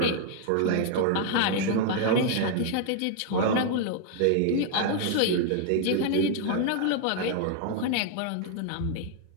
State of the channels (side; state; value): both; different; correlation 0.00